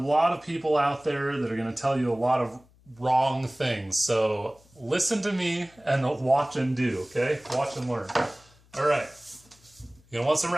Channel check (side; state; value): left; noise; hum, 29 dB below the sound